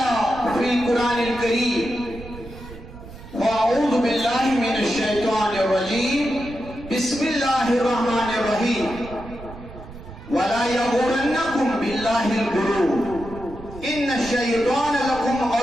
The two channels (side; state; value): right; noise; rumble, 15 dB below the sound